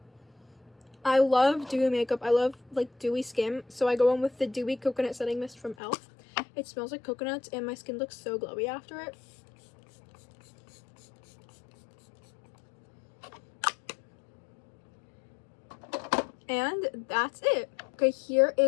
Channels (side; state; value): right; drops out; at 5.8 s